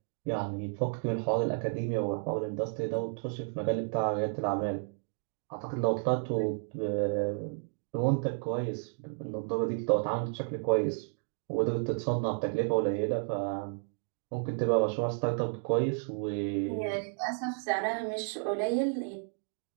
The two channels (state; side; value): silent; left; 56 dB below the other